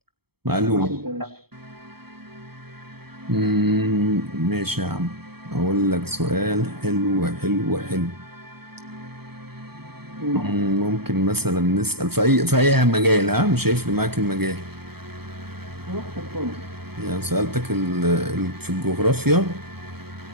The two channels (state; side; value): late; left; 0.96 ms